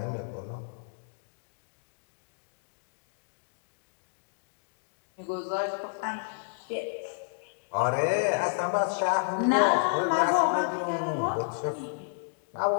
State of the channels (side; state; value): right; silent; digital silence